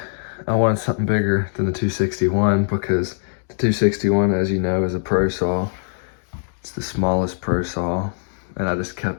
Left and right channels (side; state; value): right; silent; digital silence